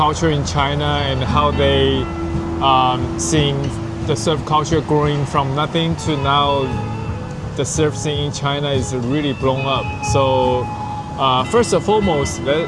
in China and how they seeing the surf culture growing from nothing to now the surf scene in China is really blown up. So first and foremost,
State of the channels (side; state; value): both; identical; correlation 1.00